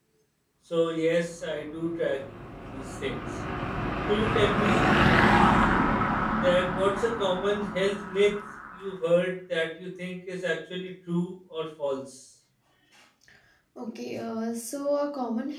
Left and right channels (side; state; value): both; identical; correlation 1.00